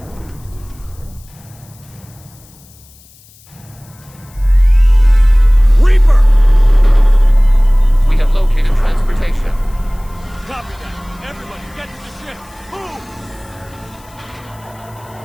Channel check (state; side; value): noise; left; hiss, 27 dB below the sound